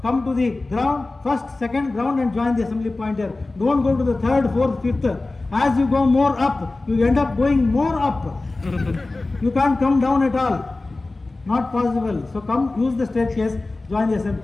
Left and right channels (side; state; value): right; quieter; 3.2 dB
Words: come to the ground, first, second ground and join the assembly point here. Don't go to the third, fourth, fifth. As you go more up, you end up going more up. You can't come down at all. Not possible. So come, use the staircase, join the assembly.